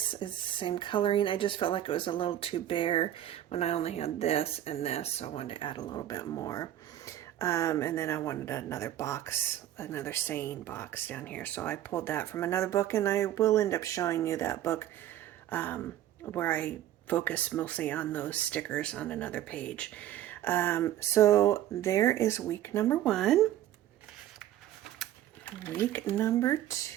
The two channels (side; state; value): left; quieter; 12.4 dB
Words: is the same coloring. I just felt like it was a little too bare when I only had this and this, so I wanted to add a little bit more. And then I wanted another box, another saying box down here. So I pulled that from another book, and I will end up showing you that book where I focus mostly on those stickers on another page. So there is week number 1. Week number